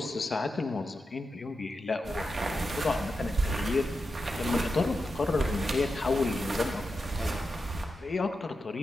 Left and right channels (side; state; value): both; normal; correlation 0.89